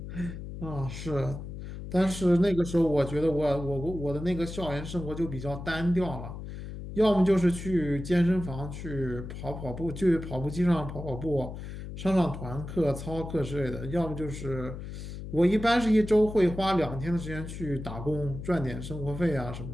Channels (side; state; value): left; noise; hum, 9 dB below the sound